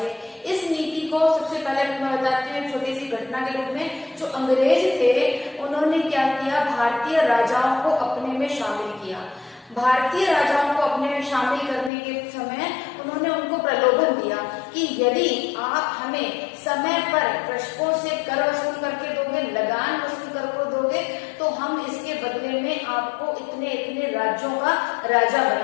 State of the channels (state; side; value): drops out; right; at 11.9 s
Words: इस नीति को सबसे पहले मैं बताती हूँ छोटी सी घटना के रूप में। जो अंग्रेज थे उन्होंने क्या किया, भारतीय राजाओं को अपने में शामिल किया। भारतीय राजाओं को अपने में शामिल करने के समय उन्होंने उनको प्रलोभन दिया कि यदि आप हमें समय पर कृषकों से कर वसूल करके दोगे, लगान वसूल करके दोगे, तो हम इसके बदले में आपको इतने इतने राज्यों का राजा